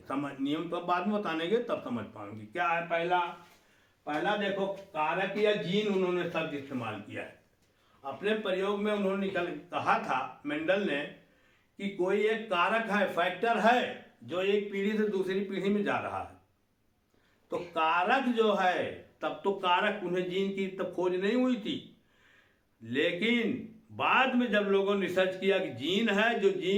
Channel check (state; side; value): identical; both; correlation 1.00